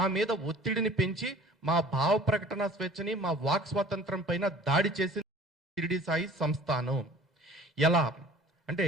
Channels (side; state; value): both; normal; correlation 0.48